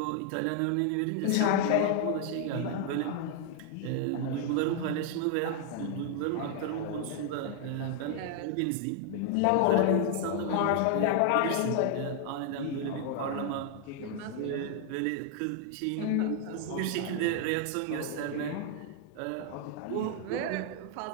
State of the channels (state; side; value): different; both; correlation 0.00